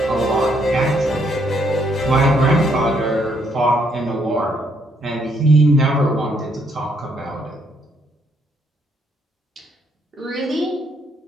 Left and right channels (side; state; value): both; normal; correlation 0.71